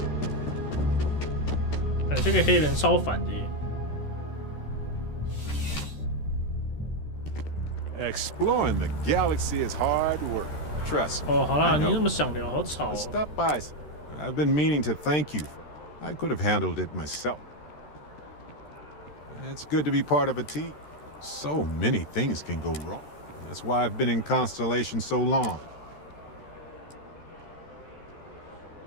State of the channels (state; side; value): late; right; 13 ms